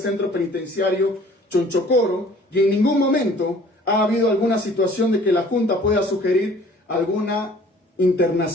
penitenciario Chonchocoro, y en ningún momento ha habido alguna situación de que la junta pueda sugerir alguna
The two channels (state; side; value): normal; both; correlation 0.52